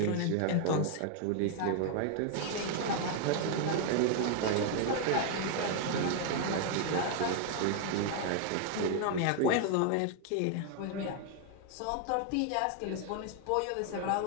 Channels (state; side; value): different; both; correlation 0.00